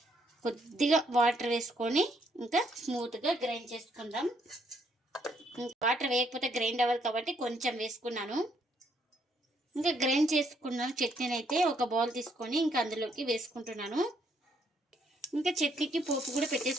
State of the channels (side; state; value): both; normal; correlation 0.71